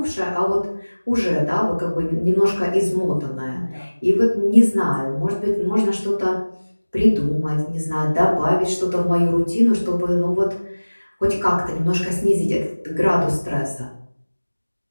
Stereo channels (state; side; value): inverted; both; correlation -1.00